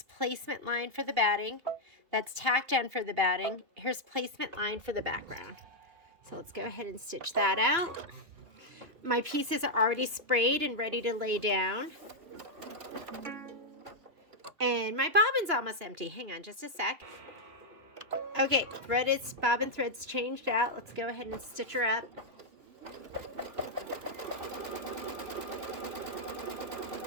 placement line for the batting. That's tack down for the batting. Here's placement line for the background. So let's go ahead and stitch that out. My pieces are already sprayed and ready to lay down. And my bobbin's almost empty. Hang on just a sec. Okay, bobbin thread's changed out. Let's go ahead and stitch her up.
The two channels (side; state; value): left; late; 2.9 ms